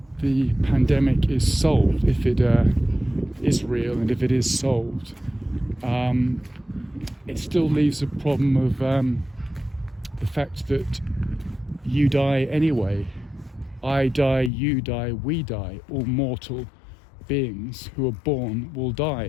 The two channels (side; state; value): right; drops out; at 14.5 s